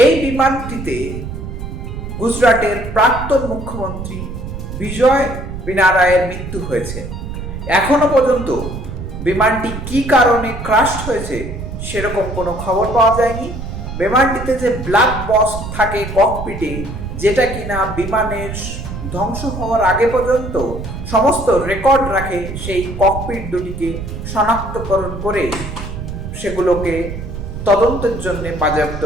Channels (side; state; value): right; noise; rumble, 8 dB below the sound